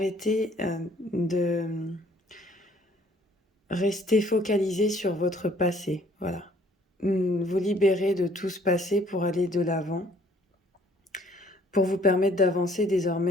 de rester focalisé sur votre passé. Voilà. Vous libérer de tout ce passé pour aller de l'avant, pour vous permettre d'avancer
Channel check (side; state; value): both; normal; correlation 0.59